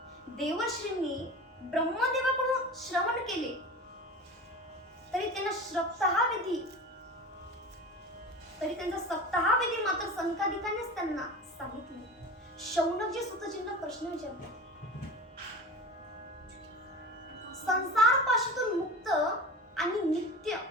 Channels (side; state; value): both; normal; correlation 0.33